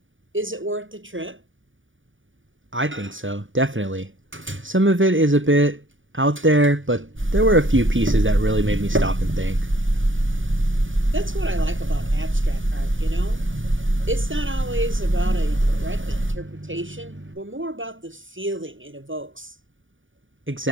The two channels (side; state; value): left; late; 0.57 ms